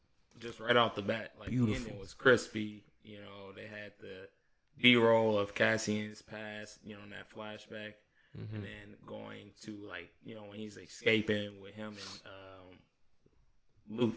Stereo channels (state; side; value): identical; both; correlation 1.00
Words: just right off the bat, like beautiful. The ending was crispy. You know, they had the B-roll of Cassian's past. You know, in that flashback. And then going to when he's escaping with him and